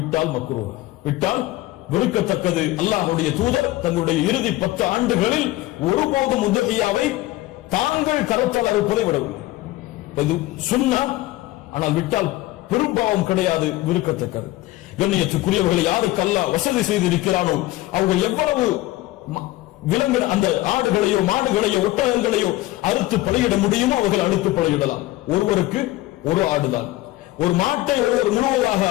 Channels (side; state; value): right; quieter; 17.6 dB